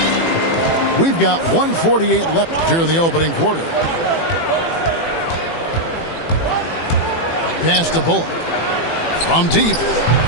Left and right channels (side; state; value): right; late; 18 ms